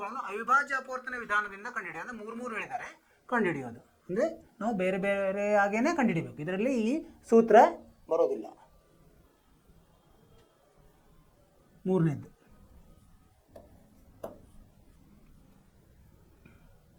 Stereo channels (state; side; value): identical; both; correlation 1.00